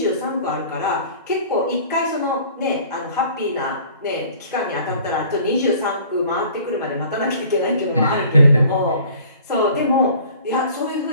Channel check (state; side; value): inverted; both; correlation -0.49